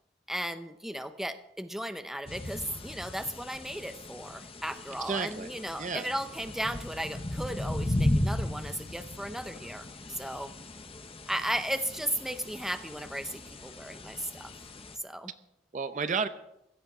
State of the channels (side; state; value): both; normal; correlation 0.76